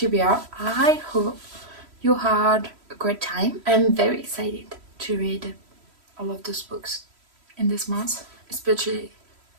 I hope you had a great time. I'm very excited to read all of those books in this month. Especially,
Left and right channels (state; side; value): late; left; 3.1 ms